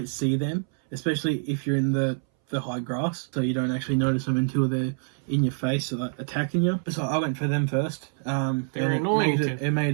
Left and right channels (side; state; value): left; silent; 61 dB below the other